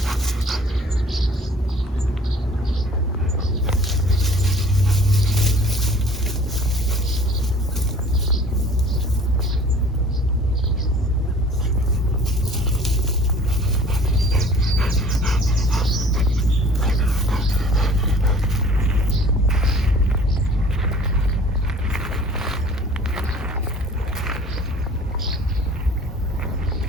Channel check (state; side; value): normal; both; correlation 0.50